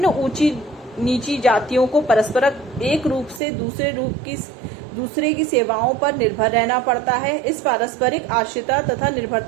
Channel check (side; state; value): left; drops out; at 3.4 s